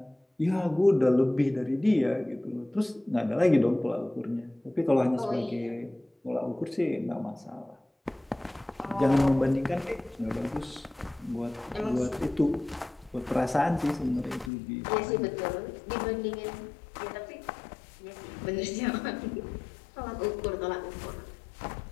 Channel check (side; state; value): right; drops out; at 14.5 s